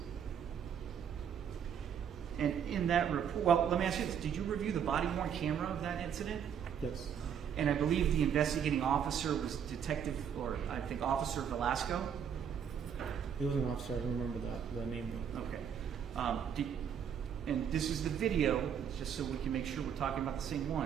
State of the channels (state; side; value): quieter; left; 8.1 dB